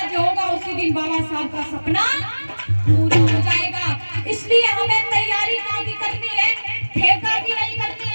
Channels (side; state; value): both; inverted; correlation -1.00